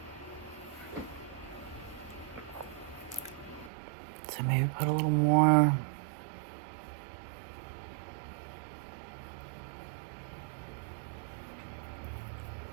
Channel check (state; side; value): drops out; left; at 3.7 s